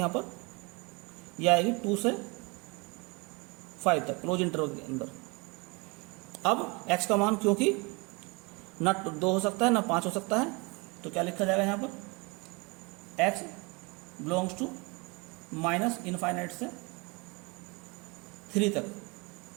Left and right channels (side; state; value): left; quieter; 28.3 dB